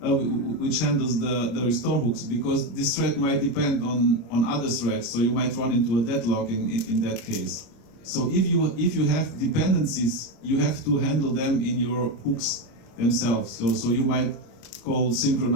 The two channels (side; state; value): right; late; 25 ms